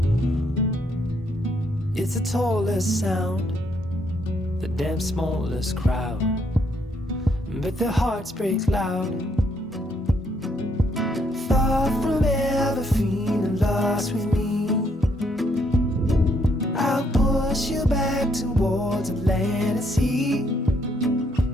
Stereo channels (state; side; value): normal; both; correlation 0.72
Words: It's the tallest sound, the damn smallest crowd, but their hearts break loud. Far from ever feeling lost with me, I'll push you back towards the land and sea.